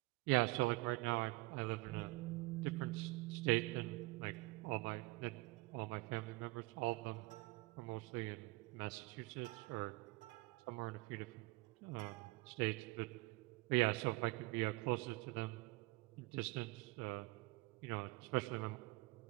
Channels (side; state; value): left; quieter; 23.6 dB